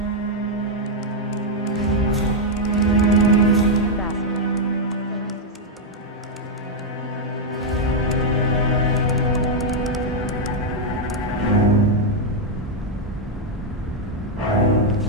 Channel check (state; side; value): normal; both; correlation -0.01